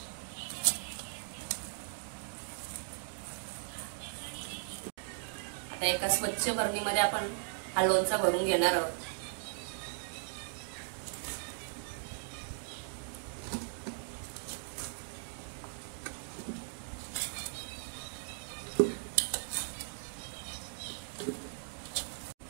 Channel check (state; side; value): silent; left; digital silence